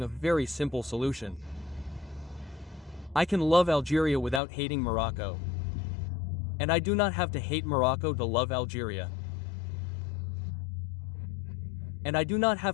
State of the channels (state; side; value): drops out; right; at 4.4 s